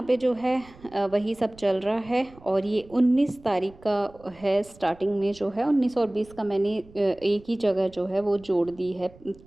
पे जो है वही सब चल रहा है। और ये 19 तारीख का है, स्टार्टिंग में जो है 19 और 20 का मैंने एक ही जगह जो है वो जोड़ दी है,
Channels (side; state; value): right; noise; rumble, 24 dB below the sound